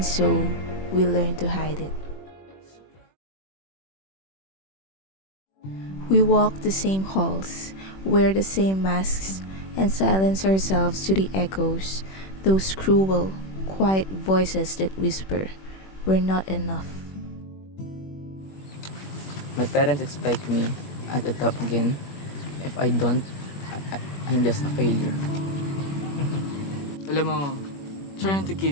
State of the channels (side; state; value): right; late; 21 ms